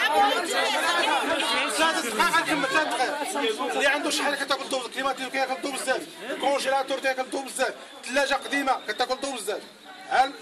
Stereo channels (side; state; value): both; identical; correlation 1.00